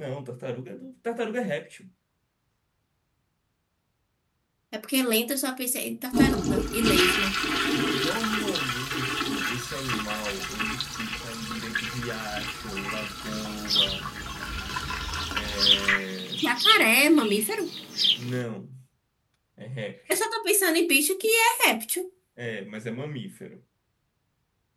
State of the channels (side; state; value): both; identical; correlation 1.00